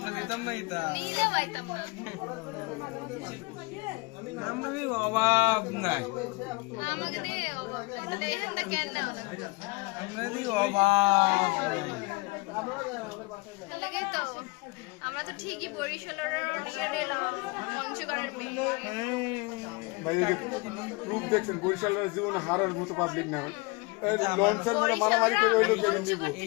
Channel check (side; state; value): right; quieter; 26.6 dB